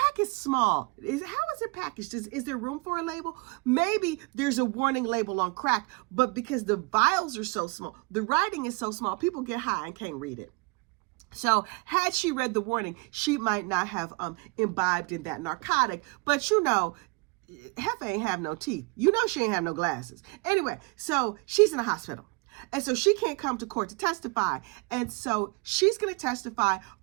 is small. How is it packaged? Is there room for a label? Maybe there's a warning label on crack, but because the vials are so small, the writing is so small, people get high and can't read it. So had she read the warning, she might not have imbibed in that narcotic. But you know, Heifer ain't have no teeth. You know she ain't have no glasses. Anyway, so she's in the hospital. And so she can't come to court to testify. And so she's going to testify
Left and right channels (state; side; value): quieter; left; 28.6 dB